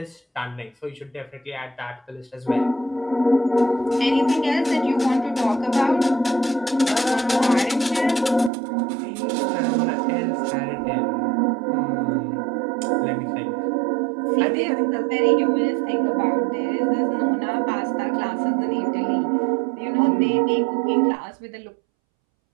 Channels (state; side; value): drops out; left; at 8.5 s